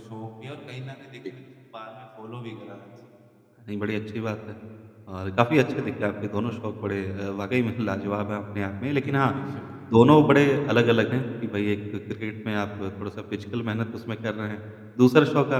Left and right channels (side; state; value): both; identical; correlation 1.00